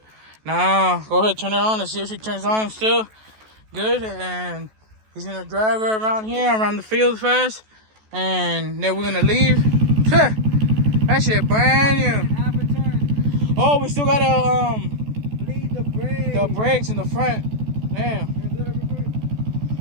Now go ahead, turn her on and see if she turns on still. Good. And he's gonna drive her around here, around the field first. And then we're gonna leave. That shit brand new. Oh, we still gotta Bleed the brake. the brakes in the front. Damn.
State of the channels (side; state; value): left; late; 14 ms